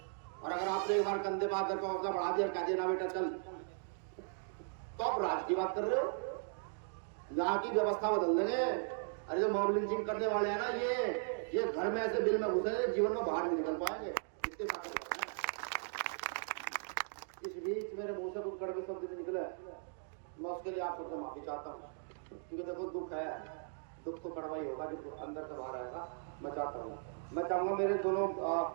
और अगर आपने एक बार कंधे पे हाथ रखा, हौसला बढ़ा दिया, कह देना बेटा चल, तो आप राज की बात कर रहे हो। यहाँ की व्यवस्था बदल देंगे। अरे जो मॉब लिंचिंग करने वाले हैं ना, ये घर में ऐसे बिल में घुसे, जीवन में बाहर नहीं निकल पाएंगे। इतने ताकत है। इस बीच मेरे मुंह से कुछ कड़वे शब्द भी निकले, मैं उसके लिए आप सबसे माफी चाहता हूँ। क्योंकि देखो दुख है, दुख तो कड़वा ही होगा, जो अंदर से बाहर आएगा। मैं चाहता हूँ, मैं चाहूंगा मेरे दोनों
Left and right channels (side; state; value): left; silent; digital silence